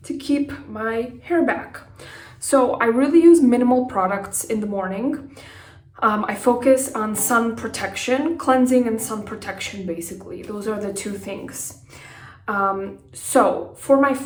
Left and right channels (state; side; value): identical; both; correlation 1.00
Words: to keep my hair back. So I really use minimal products in the morning. I focus on sun protection, cleansing and sun protection basically. Those are the two things. So for my